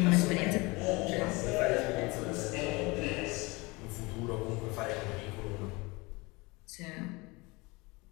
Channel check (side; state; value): right; quieter; 24.8 dB